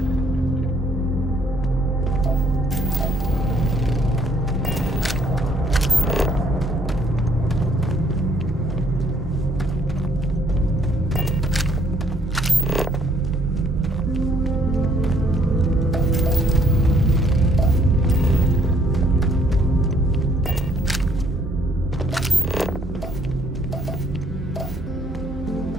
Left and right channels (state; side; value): normal; both; correlation 0.65